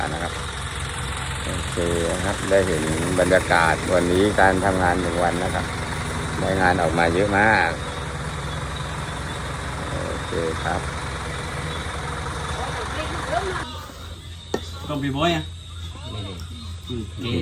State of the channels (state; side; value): identical; both; correlation 1.00